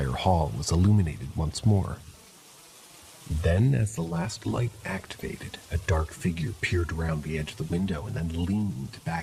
hall was illuminated once more. Then, as the last light activated, a dark figure peered around the edge of the window and then leaned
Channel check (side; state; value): both; identical; correlation 1.00